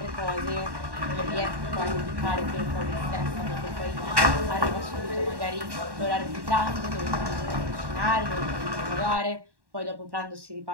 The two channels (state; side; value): late; left; 1.1 ms